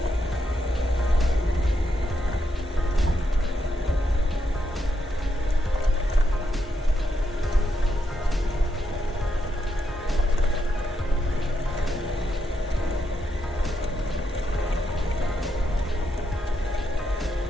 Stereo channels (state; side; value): normal; both; correlation 0.82